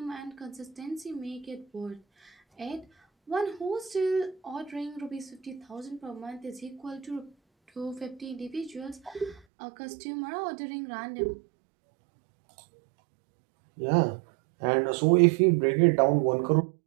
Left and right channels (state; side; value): drops out; left; at 9.4 s